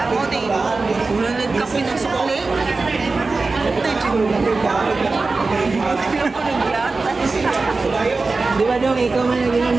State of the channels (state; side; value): quieter; left; 3.8 dB